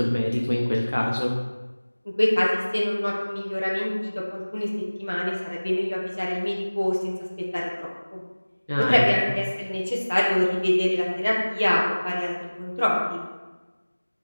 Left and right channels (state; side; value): inverted; both; correlation -1.00